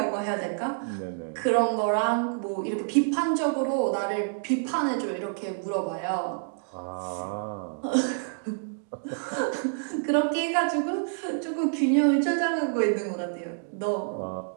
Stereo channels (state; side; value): silent; left; digital silence